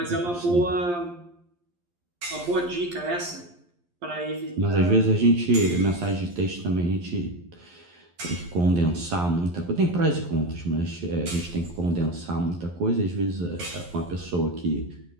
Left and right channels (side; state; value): left; late; 11 ms